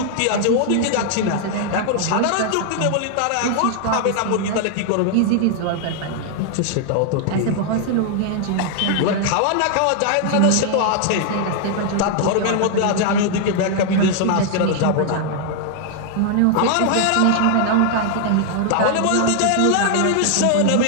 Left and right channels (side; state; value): both; different; correlation 0.00